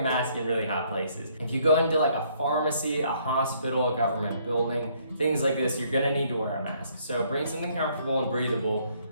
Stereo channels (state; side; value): inverted; both; correlation -0.66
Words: a mask in really hot places. If you go into like a pharmacy, a hospital, a government building, things like this, you're gonna need to wear a mask. So bring something comfortable and breathable,